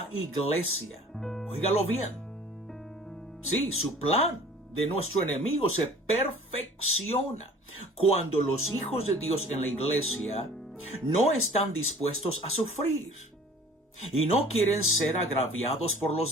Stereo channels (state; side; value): normal; both; correlation 0.48